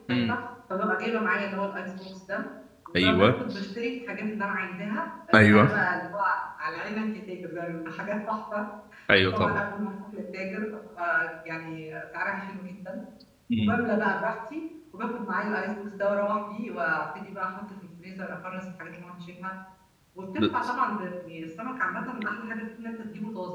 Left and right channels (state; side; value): identical; both; correlation 1.00